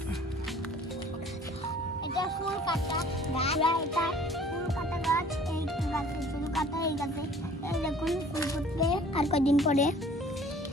এটা ফুল কাটা গাছ। এটা ফুল কাটা গাছ। এই গাছে ফুল কাটা, এই গাছে এই দেখুন ফুল ফুটবে আর কদিন পরে।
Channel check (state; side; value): normal; both; correlation 0.51